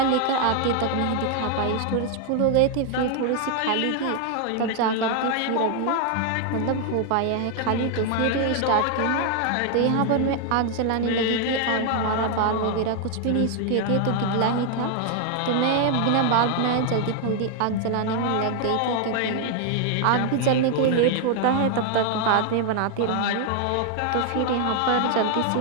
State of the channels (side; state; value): both; different; correlation 0.00